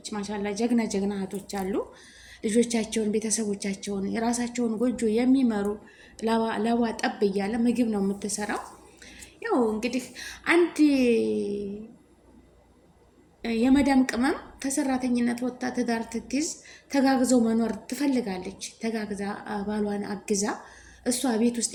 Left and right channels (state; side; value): identical; both; correlation 1.00